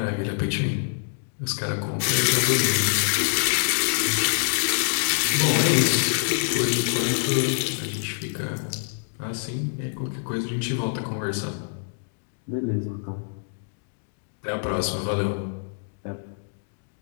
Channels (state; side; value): silent; right; digital silence